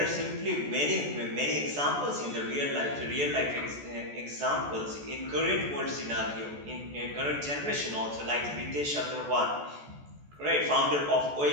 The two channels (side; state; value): left; late; 14 ms